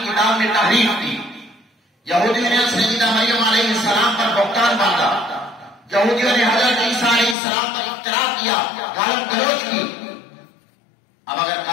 کتاب میں تحریف کی، یہودیوں نے سیدہ مریم علیہ السلام پر بہتان باندھا، یہودیوں نے حضرت عیسیٰ علیہ السلام پر افترا کیا، گالی گلوچ کی۔ اب اگر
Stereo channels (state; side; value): drops out; right; at 7.4 s